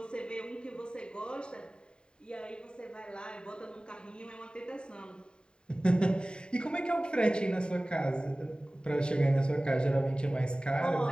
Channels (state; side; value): late; right; 0.049 ms